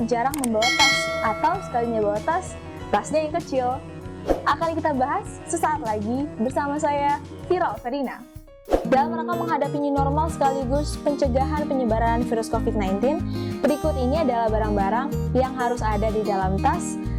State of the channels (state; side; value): identical; both; correlation 1.00